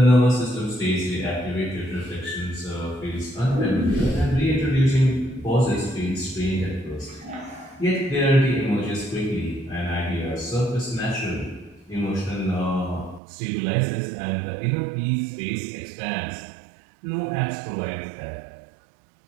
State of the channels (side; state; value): left; drops out; at 13.2 s